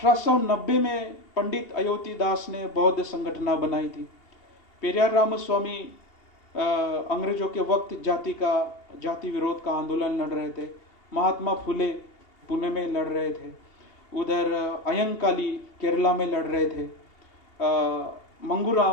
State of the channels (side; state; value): right; late; 2.8 ms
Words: में पंडित अयोती दास ने बौद्ध संगठना बनाई थी। पेरियार रामस्वामी अंग्रेजों के वक्त जाति विरोध का आंदोलन लड़ रहे थे। महात्मा फुले पुणे में लड़ रहे थे। उधर अयंकाली केरला में लड़ रहे थे।